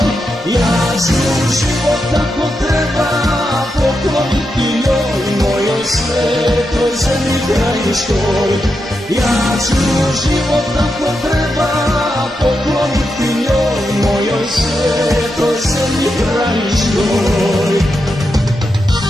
Ja ću život tako treba pokloniti njoj, mojoj svetoj zemlji krajiškoj. Ja ću život tako treba pokloniti njoj, mojoj svetoj zemlji krajiškoj.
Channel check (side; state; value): both; normal; correlation 0.86